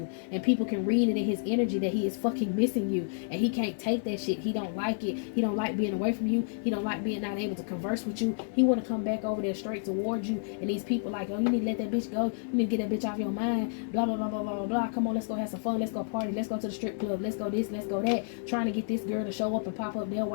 and people can read it in his energy that he is fucking missing you, and he can't take that shit. He don't like it. He don't like being away from you. He don't like being not able to converse with you. He want to come back over there straight towards you, and these people like, oh, you need to let that bitch go, you need to get that bitch off your mind, blah blah blah blah blah blah. Come on, let's go have some fun, let's go party, let's go to the strip club, let's go this, let's go that, trying to get this girl to show up and pop up there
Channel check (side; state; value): right; silent; digital silence